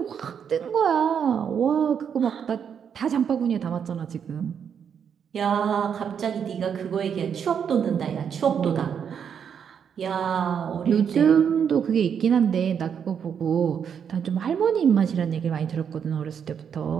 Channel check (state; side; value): quieter; left; 7.6 dB